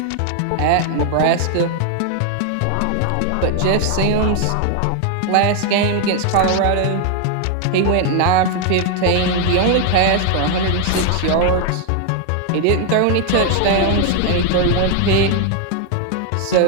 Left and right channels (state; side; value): different; both; correlation 0.00